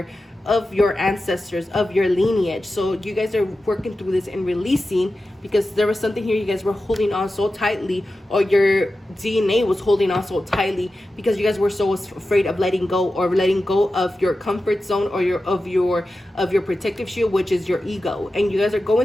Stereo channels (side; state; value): both; normal; correlation 0.93